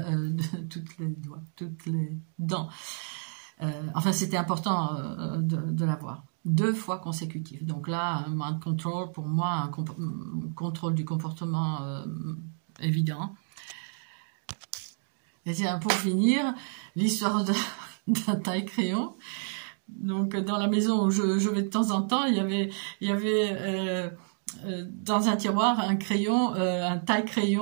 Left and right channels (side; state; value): left; silent; digital silence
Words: les dents. Enfin, c'était important de l'avoir. 2 fois consécutives. Donc là, un mind control, pour moi, un contrôle du comportement évident. Et tiens, pour finir, l'histoire d'un taille-crayon. Donc, dans la maison où je vais de temps en temps, il y avait dans un tiroir un crayon, un